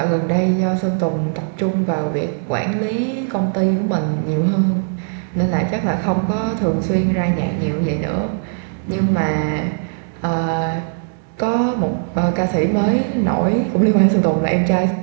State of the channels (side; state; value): left; silent; 67 dB below the other